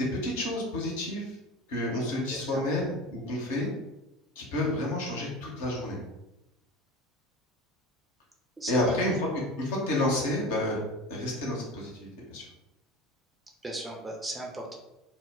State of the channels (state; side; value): normal; both; correlation 0.32